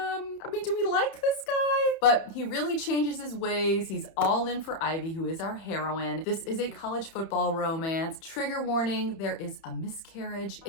do we like this guy? But he really changes his ways. He's all in for Ivy, who is our heroine. This is a college football romance. Trigger warning, there is a miscarriage.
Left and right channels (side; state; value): right; late; 31 ms